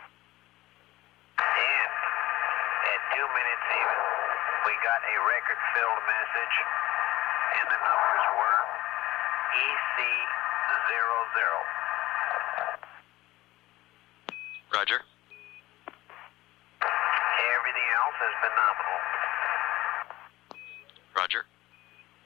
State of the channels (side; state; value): right; quieter; 17.5 dB